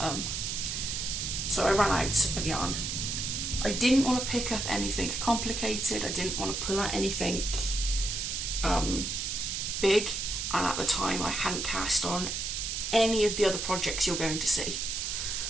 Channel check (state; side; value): noise; right; hiss, 2 dB below the sound